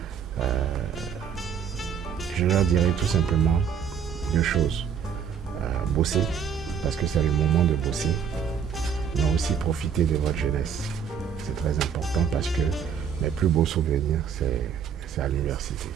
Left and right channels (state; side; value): quieter; left; 7.5 dB